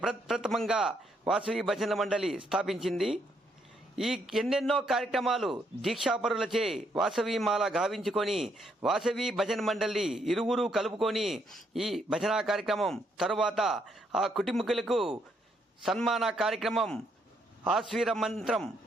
ప్రప్రథమంగా వాసవి భజన మండలి స్థాపించింది. ఈ ఎన్నెన్నో కార్యక్రమాలు దీక్షాపరులచే వాసవి మాల గావించుకొని వాసవి భజన మండలి ఇరువురు కలుపుకొని ఈ భజనా కార్యక్రమం తరువాత ఆ కుటుంబీకులకు సన్మాన కార్యక్రమం, ఆశ్వీర మంత్రం,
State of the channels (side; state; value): both; normal; correlation 0.74